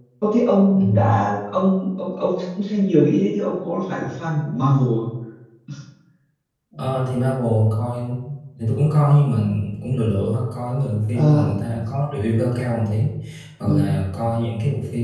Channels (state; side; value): identical; both; correlation 1.00